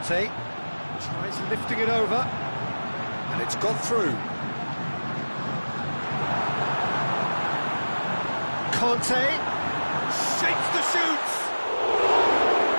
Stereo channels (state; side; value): inverted; both; correlation -1.00